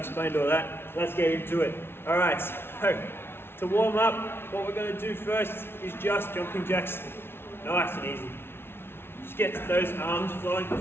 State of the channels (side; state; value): right; late; 0.12 ms